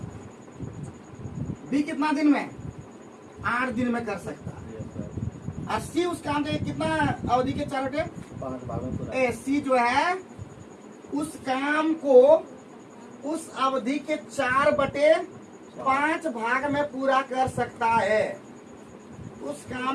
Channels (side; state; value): both; identical; correlation 1.00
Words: बी कितना दिन में? 8 दिन में कर सकता है। और सी उस काम के कितना अवधि के 4 बटे 5 भागों में। सी जो है उस काम को उस अवधि के 4 बटे 5 भाग में पूरा कर सकता है। उस